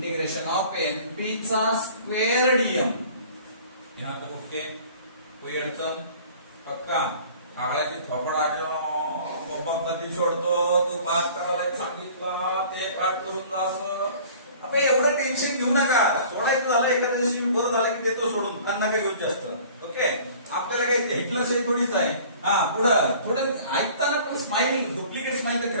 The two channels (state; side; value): inverted; both; correlation -0.48